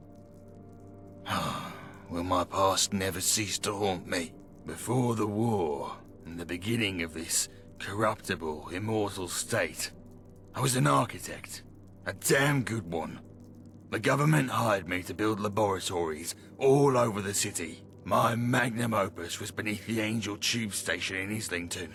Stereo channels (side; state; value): both; identical; correlation 1.00